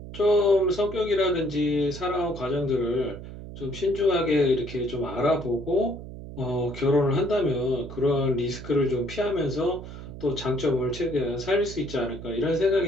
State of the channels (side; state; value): right; noise; hum, 12 dB below the sound